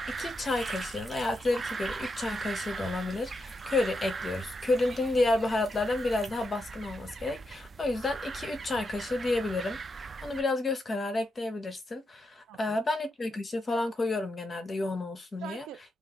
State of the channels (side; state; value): both; normal; correlation 0.84